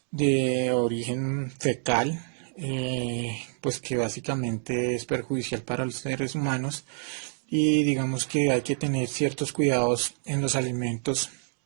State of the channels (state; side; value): silent; left; digital silence